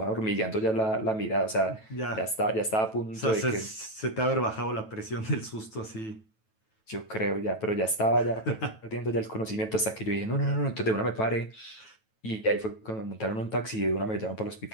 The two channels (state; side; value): late; right; 9.2 ms